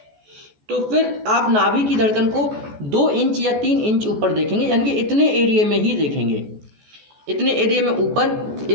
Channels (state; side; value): late; left; 14 ms